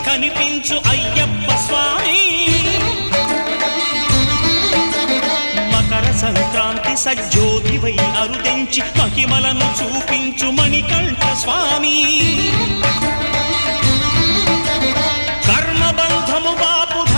కనిపించు అయ్యప్ప స్వామి మకర సంక్రాంతి సజ్జోతివై అరుదెంచి మహిమలను చూపించు మణికంఠ స్వామి కర్మబంధము బాపు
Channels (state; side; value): inverted; both; correlation -1.00